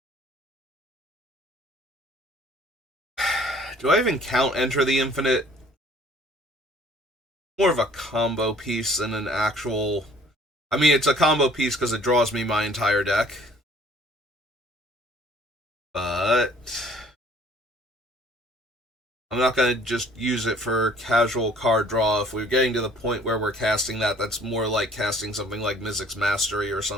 Do I even count Enter the Infinite? More of a combo piece than an actual... I mean, it's a combo piece because it draws me my entire deck. But... I'm not going to just use it for casual card draw. If we're getting to the point where we're casting that, that's more like casting something like Mizzix's Mastery or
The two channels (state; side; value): normal; both; correlation 0.56